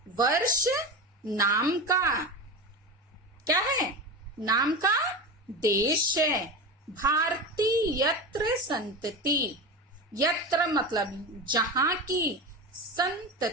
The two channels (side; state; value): both; normal; correlation 0.24